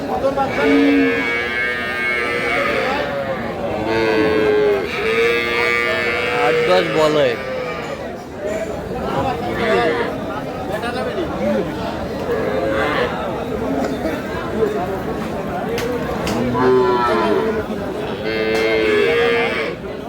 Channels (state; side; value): identical; both; correlation 1.00